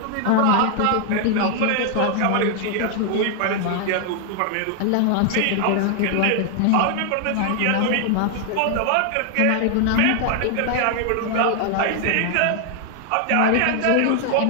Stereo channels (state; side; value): different; both; correlation 0.00